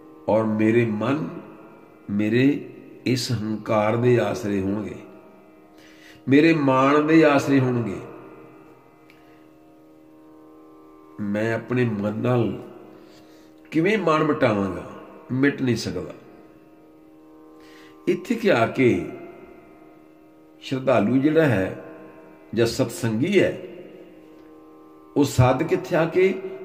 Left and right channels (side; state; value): both; identical; correlation 1.00